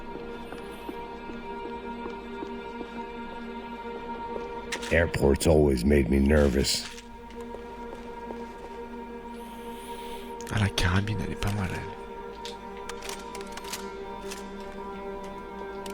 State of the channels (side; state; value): both; identical; correlation 1.00